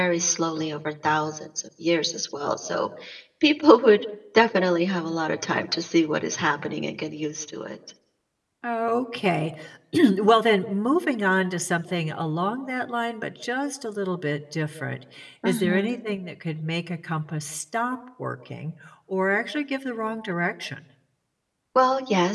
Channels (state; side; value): identical; both; correlation 1.00